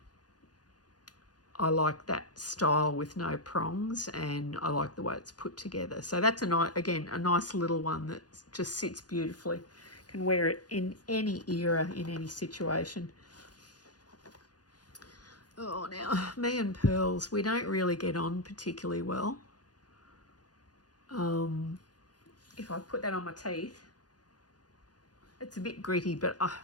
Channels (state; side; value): late; right; 0.69 ms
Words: I like that style with no prongs, and I like the way it's put together. So that's a nice little one that just sits beautifully. Can wear it in any era, in any situation. Oh, now, me and pearls, we don't really get on particularly well. If I put that on my teeth, it's a bit gritty, but